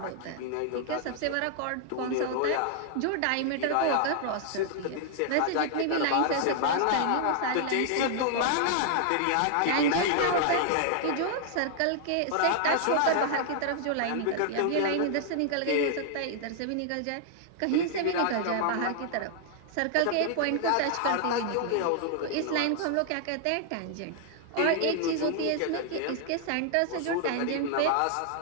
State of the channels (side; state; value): both; different; correlation 0.00